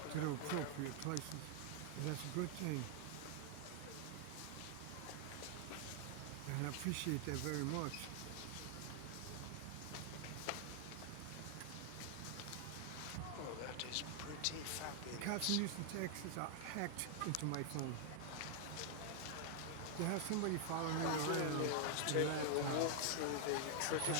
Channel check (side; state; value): both; different; correlation 0.00